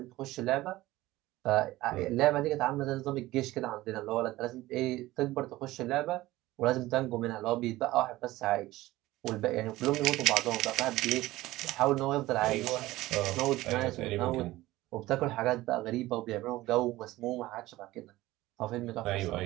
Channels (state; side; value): quieter; left; 17.5 dB